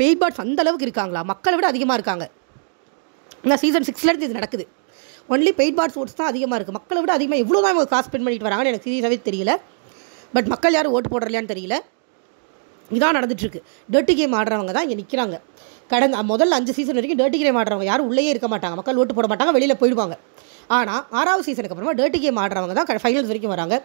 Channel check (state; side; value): silent; left; digital silence